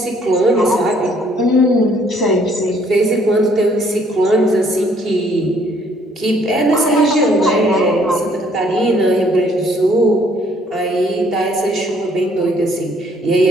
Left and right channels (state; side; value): normal; both; correlation 0.63